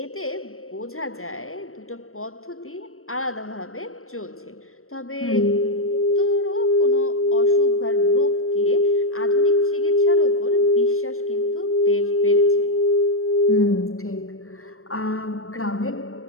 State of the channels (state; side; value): late; right; 0.62 ms